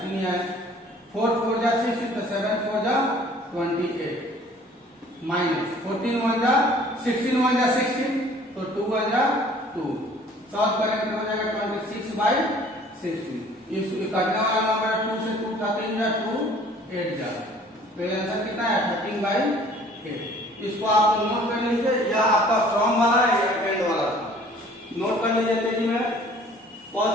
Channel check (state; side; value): normal; both; correlation 0.53